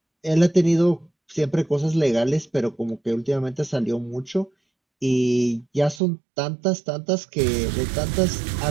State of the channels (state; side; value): drops out; left; at 6.0 s